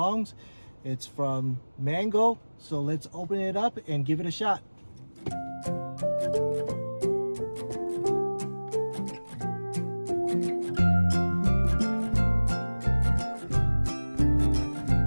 It's from Mangoal. So let's open it up and give it a shot.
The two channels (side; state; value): both; inverted; correlation -1.00